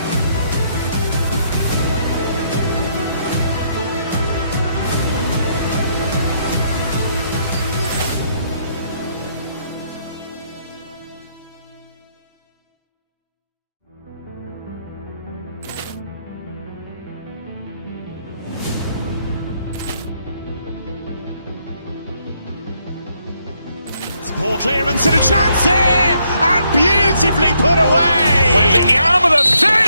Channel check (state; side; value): inverted; both; correlation -0.73